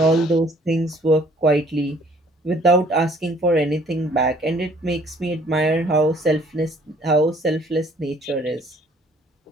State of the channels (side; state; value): both; normal; correlation 0.58